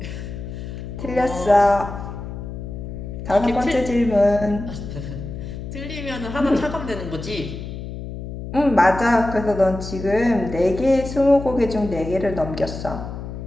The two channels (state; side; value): noise; left; hum, 8 dB below the sound